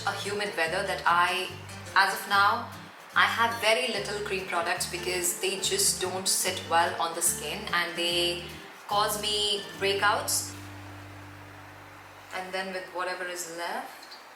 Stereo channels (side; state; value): both; identical; correlation 1.00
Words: a humid weather that as of now, I have very little cream products because they just don't sit well on the skin and they cause me breakouts. And then with whatever is left,